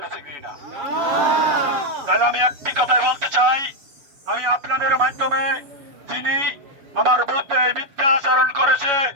কিনা। তাহলে আমি একটি কথাই বলতে চাই, আমি আপনাদের মাধ্যমে যিনি আমার বিরুদ্ধে মিথ্যা আচরণ করেছে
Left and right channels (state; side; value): late; left; 7.1 ms